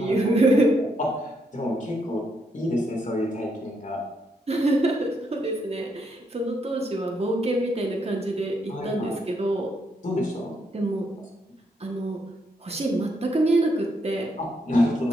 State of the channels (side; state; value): both; normal; correlation 0.77